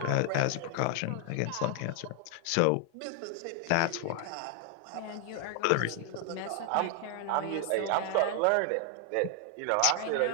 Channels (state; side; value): different; both; correlation 0.00